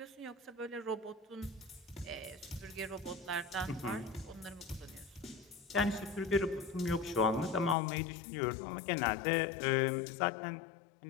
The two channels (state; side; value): drops out; right; at 7.8 s